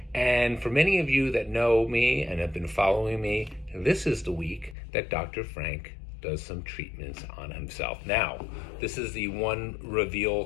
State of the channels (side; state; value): right; drops out; at 4.8 s